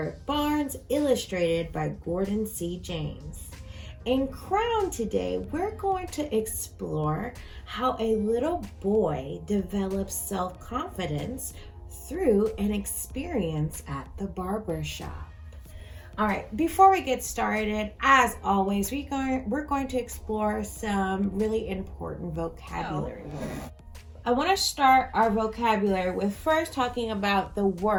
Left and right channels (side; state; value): both; identical; correlation 1.00